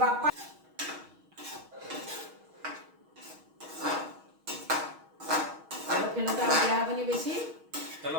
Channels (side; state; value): left; late; 6.3 ms